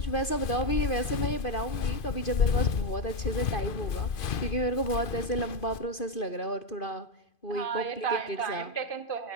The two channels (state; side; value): late; right; 2.5 ms